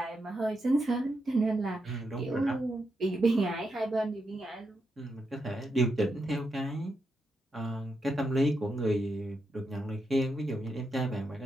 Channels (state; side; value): normal; both; correlation 0.84